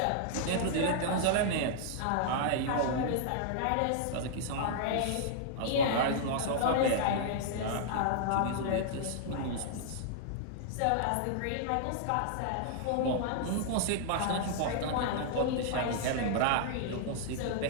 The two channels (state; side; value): different; both; correlation -0.01